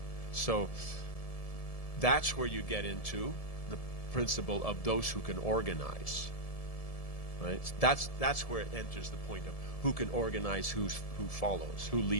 So that's where you get into the principle of those who can organize, right? That's where it enters the point of who can organize who follows, who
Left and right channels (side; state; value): right; late; 1.7 ms